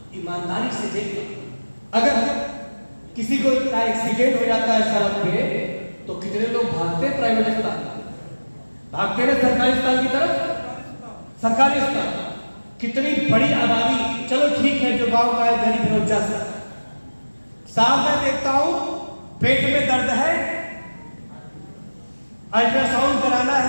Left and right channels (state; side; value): inverted; both; correlation -1.00